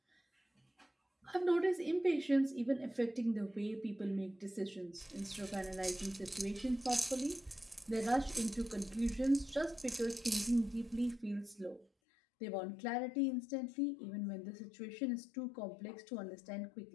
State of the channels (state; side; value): drops out; right; at 11.9 s